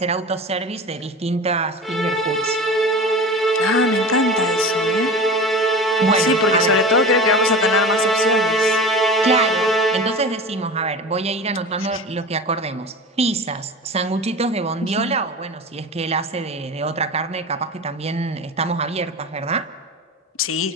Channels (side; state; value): both; normal; correlation 0.32